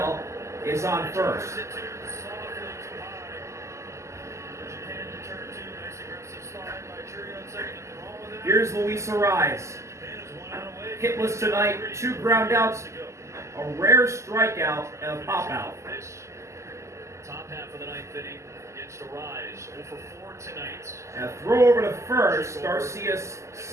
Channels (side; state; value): left; late; 0.14 ms